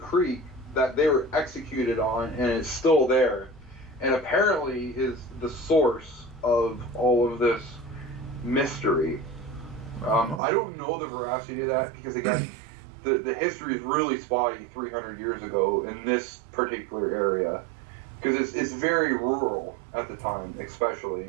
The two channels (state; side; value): drops out; left; at 10.4 s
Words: that they were executed on, and it's still there, and apparently is the source of all of this mystery. I don't know the veracity of that because, again, the history is really spotty 300 years ago in this particular area because it's very rural at the time,